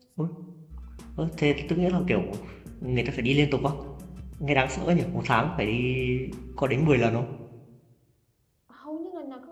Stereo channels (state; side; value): identical; both; correlation 1.00